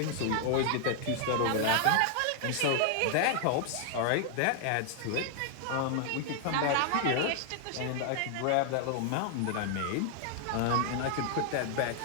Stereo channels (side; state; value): both; different; correlation 0.00